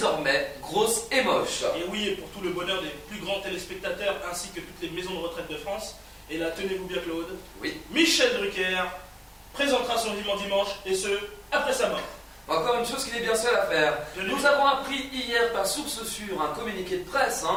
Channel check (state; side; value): identical; both; correlation 1.00